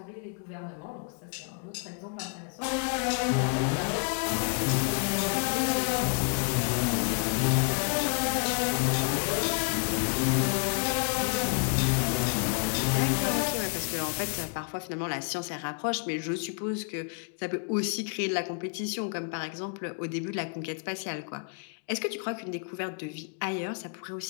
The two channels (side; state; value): right; quieter; 39.0 dB